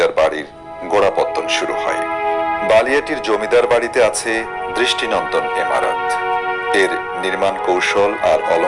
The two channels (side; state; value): both; identical; correlation 1.00